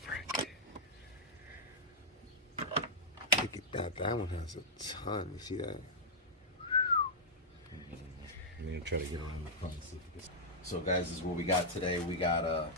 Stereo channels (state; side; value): normal; both; correlation -0.07